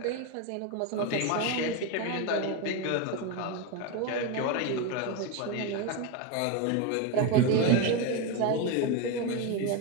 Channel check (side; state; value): both; different; correlation 0.03